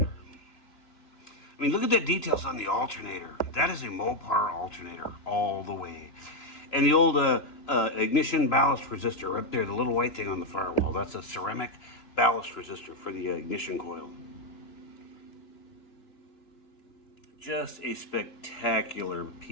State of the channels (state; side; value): late; right; 2.9 ms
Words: I mean, look at the details on the alternator. That is a Mopar alternator all the way. And the old ignition ballast resistor up there, the little white thing on the firewall, that's a ceramic ballast resistor for the ignition coil. Just a spectacular